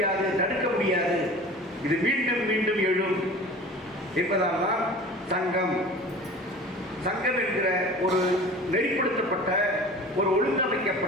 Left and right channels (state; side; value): normal; both; correlation 0.40